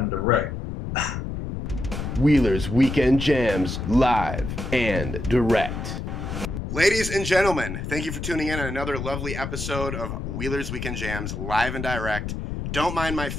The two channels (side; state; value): left; noise; rumble, 5 dB below the sound